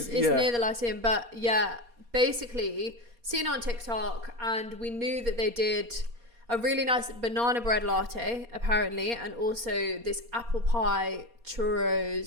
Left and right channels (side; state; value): left; late; 4.2 ms